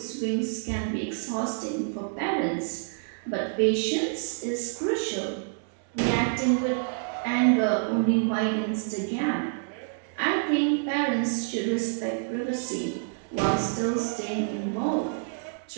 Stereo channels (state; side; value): silent; left; digital silence